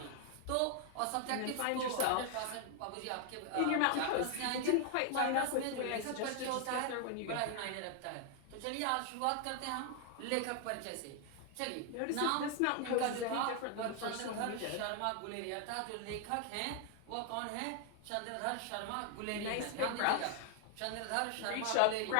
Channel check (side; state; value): both; different; correlation 0.00